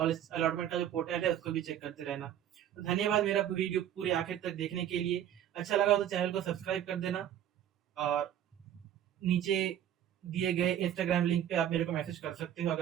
अलॉटमेंट का जो पोर्टल है उसको भी चेक करते रहना। तो धन्यवाद मेरा वीडियो पूरे आखिर तक देखने के लिए। अच्छा लगा तो चैनल को सब्सक्राइब कर देना, और नीचे दिए गए इंस्टाग्राम लिंक पे आप मेरे को मैसेज कर सकते हो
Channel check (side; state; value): left; quieter; 10.7 dB